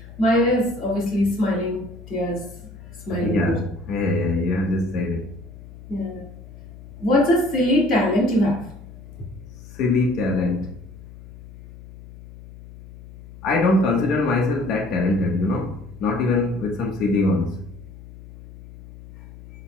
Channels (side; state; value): left; noise; hum, 17 dB below the sound